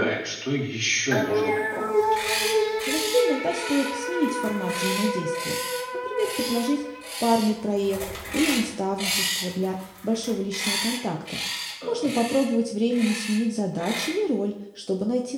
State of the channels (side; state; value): both; identical; correlation 1.00